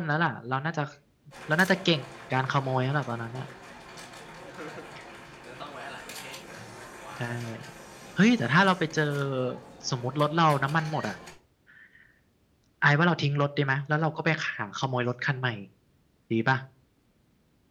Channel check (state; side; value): identical; both; correlation 1.00